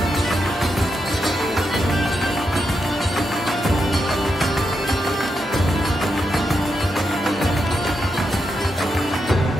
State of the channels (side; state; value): both; normal; correlation 0.85